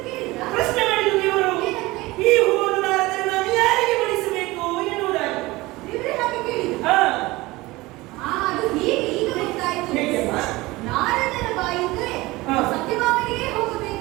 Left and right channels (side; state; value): left; quieter; 20.6 dB